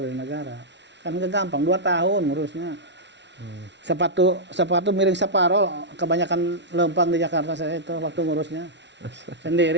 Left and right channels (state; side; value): late; left; 0.51 ms